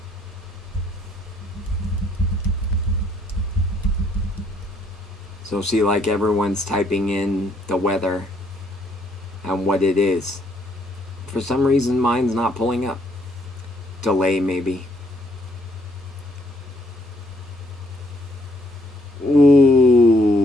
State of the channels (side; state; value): both; normal; correlation 0.68